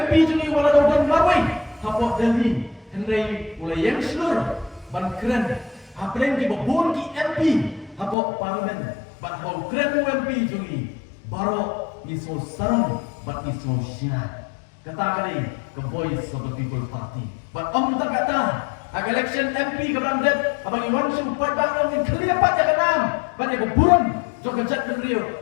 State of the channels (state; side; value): drops out; right; at 8.2 s